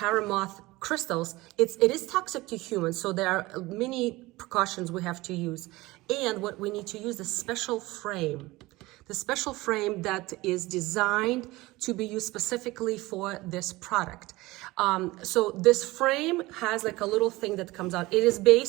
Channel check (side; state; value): left; quieter; 20.2 dB